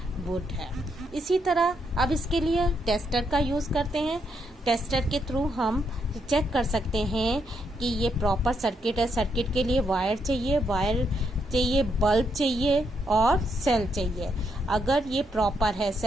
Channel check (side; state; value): both; normal; correlation 0.77